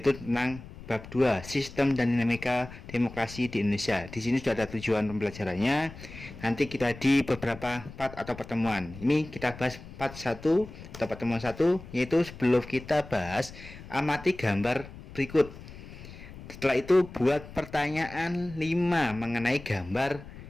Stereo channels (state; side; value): noise; left; rumble, 15 dB below the sound